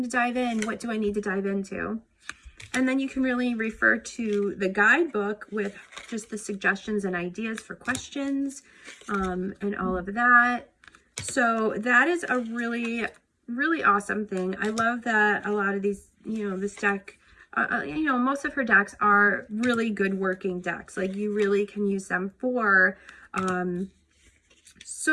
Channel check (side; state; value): both; identical; correlation 1.00